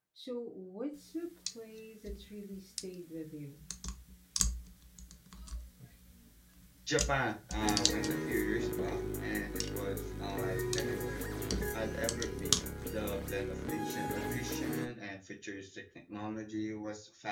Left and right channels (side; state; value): both; identical; correlation 1.00